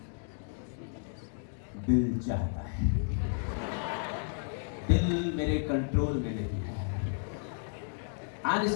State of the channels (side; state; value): right; silent; digital silence